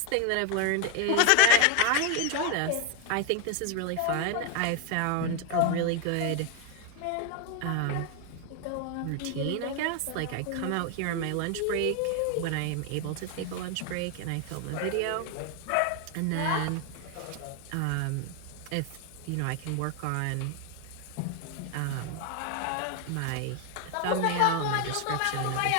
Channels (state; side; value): different; both; correlation 0.01